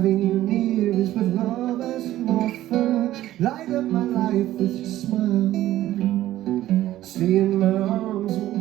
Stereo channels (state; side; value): quieter; left; 14.2 dB